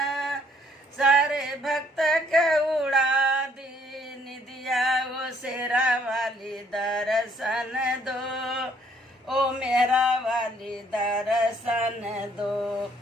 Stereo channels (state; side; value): normal; both; correlation 0.65